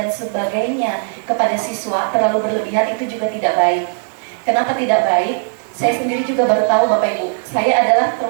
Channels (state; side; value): silent; left; 56 dB below the other